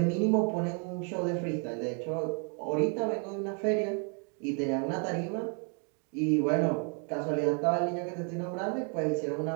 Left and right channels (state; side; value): quieter; left; 38.6 dB